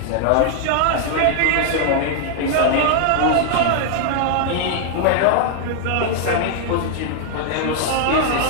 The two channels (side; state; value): both; different; correlation 0.00